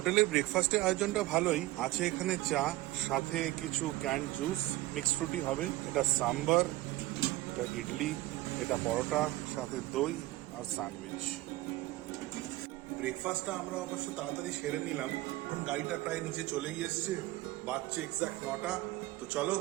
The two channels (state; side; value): quieter; left; 18.0 dB